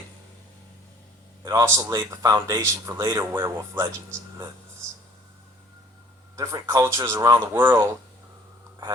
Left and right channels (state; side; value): normal; both; correlation 0.54